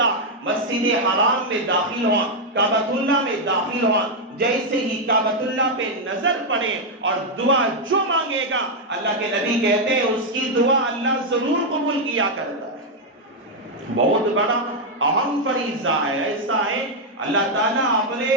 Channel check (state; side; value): normal; both; correlation 0.00